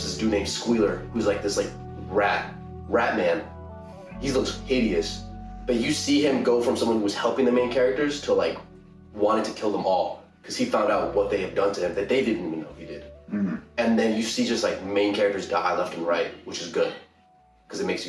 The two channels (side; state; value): both; identical; correlation 1.00